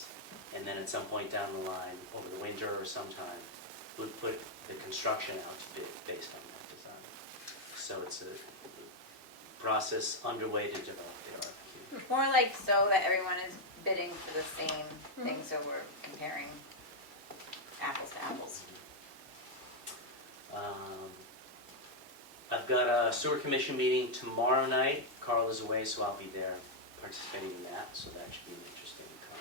and then at some point down the line, over the winter or sometime, we'd put the construction out to bid based on that design. So it's a process underway to develop the RFQ. More like so that everyone is bidding for the same thing, so we're comparing apples to apples. I've got a sewer commission meeting tomorrow night. Carl is away, so I'll be there participating in that, so that should be an interesting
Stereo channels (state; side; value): late; left; 2.5 ms